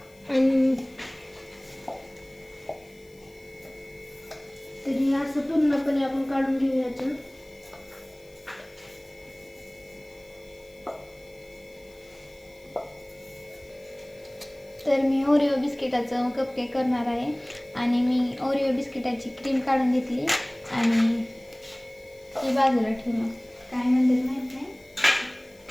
आणि तरी असं पूर्णपणे आपण काढून घेऊयाचं. तर मी ओरिओ बिस्किटाचं कपकेक करणार आहे आणि मी ओरिओ बिस्किटाची क्रीम काढून घेतली आणि ही बाजूला ठेवून काय म्हणतात माहीत नाही.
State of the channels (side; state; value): left; noise; hiss, 28 dB below the sound